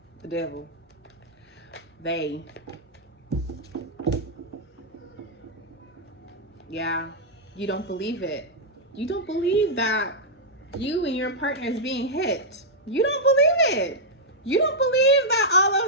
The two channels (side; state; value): both; normal; correlation -0.07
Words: The devil. They. Yeah. You don't believe it. You don't believe that you and your partner is being hit. You don't believe it. You don't believe that all